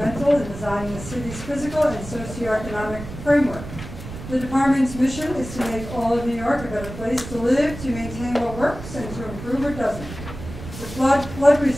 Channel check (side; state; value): right; noise; rumble, 11 dB below the sound